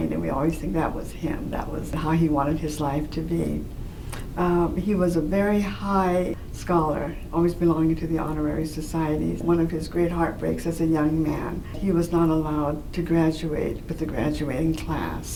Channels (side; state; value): both; identical; correlation 1.00